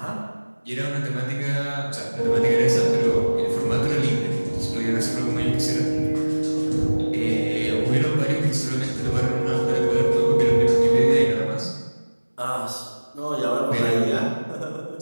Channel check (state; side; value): inverted; both; correlation -1.00